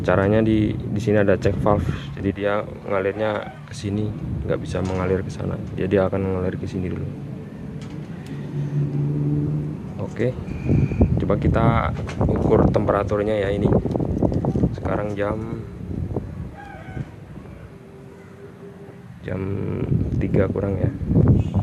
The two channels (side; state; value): both; identical; correlation 1.00